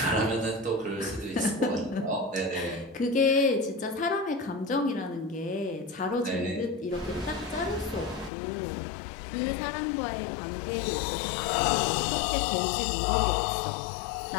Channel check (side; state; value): right; drops out; at 8.3 s